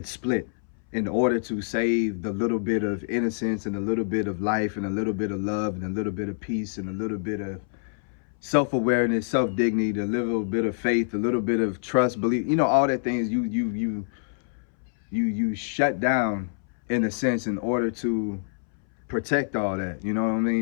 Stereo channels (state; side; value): silent; right; 61 dB below the other